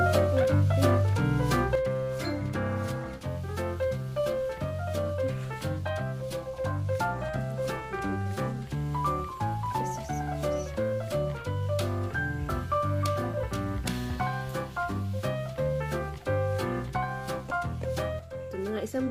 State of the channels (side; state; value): both; identical; correlation 1.00